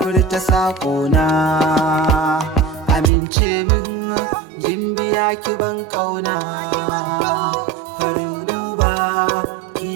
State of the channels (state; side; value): drops out; left; at 3.1 s